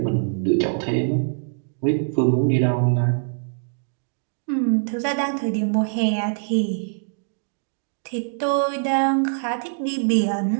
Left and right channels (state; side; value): silent; left; digital silence